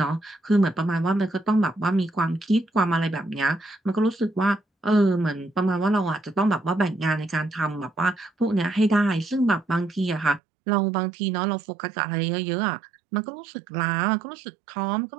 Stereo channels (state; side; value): drops out; left; at 10.4 s